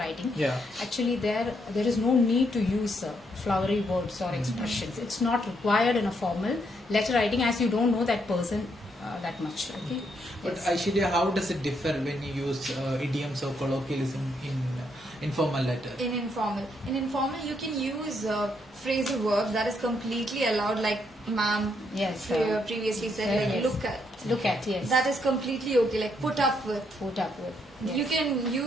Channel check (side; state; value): both; normal; correlation 0.75